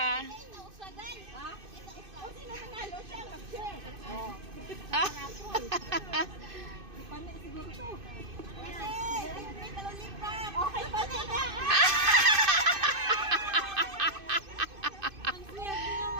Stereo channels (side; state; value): left; late; 2.5 ms